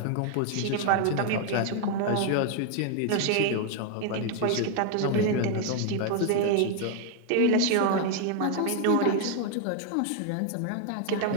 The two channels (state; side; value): different; both; correlation 0.00